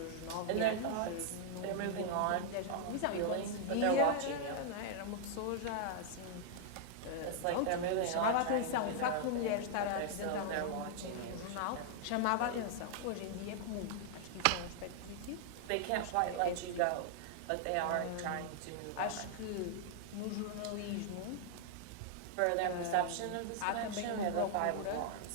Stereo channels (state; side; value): different; both; correlation -0.01